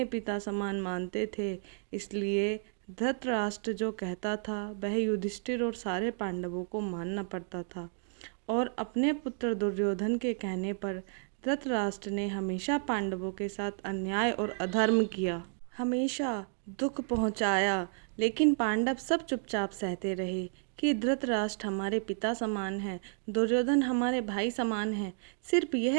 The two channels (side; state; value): left; silent; 56 dB below the other